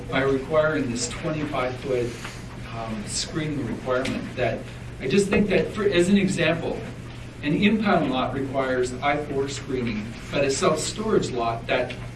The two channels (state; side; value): identical; both; correlation 1.00